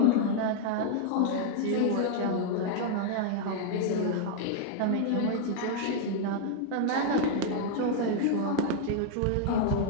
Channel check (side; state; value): both; different; correlation 0.00